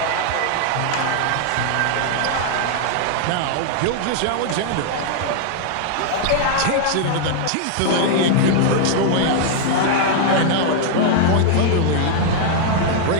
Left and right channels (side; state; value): both; different; correlation 0.00